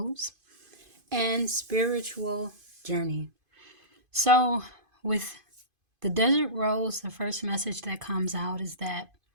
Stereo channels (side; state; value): left; late; 2.5 ms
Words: and Spiritual Journey. So with the Desert Rose, the first message that comes out is that